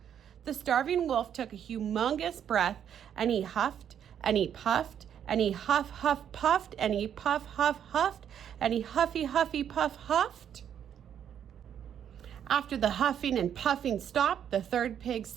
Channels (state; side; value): quieter; left; 9.1 dB